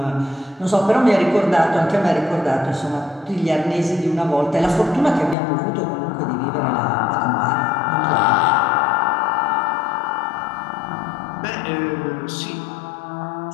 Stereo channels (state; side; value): drops out; right; at 5.4 s